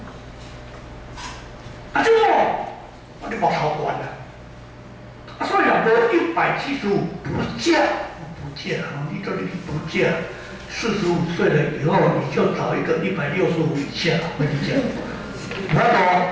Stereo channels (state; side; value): identical; both; correlation 1.00